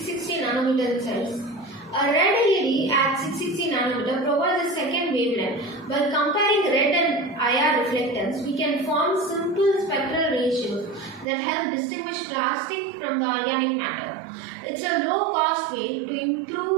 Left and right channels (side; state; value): left; drops out; at 11.2 s